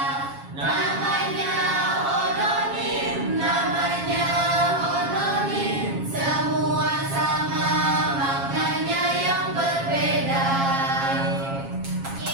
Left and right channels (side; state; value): left; late; 7.3 ms